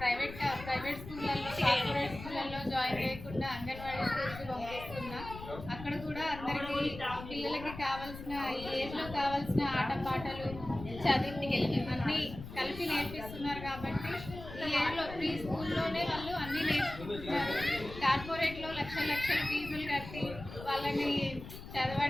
స్కూళ్ళల్లో, కార్పొరేట్ స్కూళ్ళల్లో జాయిన్ చేయకుండా అంగన్వాడీ స్కూల్కి పంపిస్తున్నా. అక్కడ కూడా అందరికీ పిల్లలకి కావాల్సిన ఈ ఏజ్లో కావాల్సిన ఆటపాటలు, చదువు అన్నీ కలిపి నేర్పిస్తున్నారు. కాబట్టి ఈ ఏజ్లో ప్రీ స్కూల్లోనే వాళ్ళు అన్నీ నేర్చుకుంటున్నారు. కార్పొరేట్లో లక్షల ఫీజులు కట్టి వాళ్ళని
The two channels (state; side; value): noise; left; rumble, 12 dB below the sound